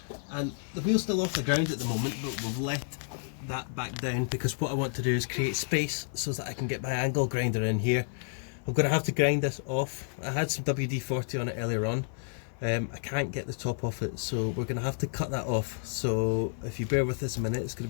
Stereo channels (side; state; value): right; silent; 58 dB below the other